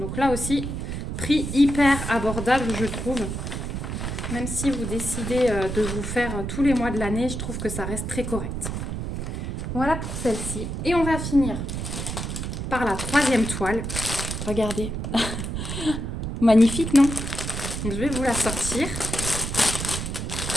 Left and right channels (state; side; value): noise; right; rumble, 4 dB below the sound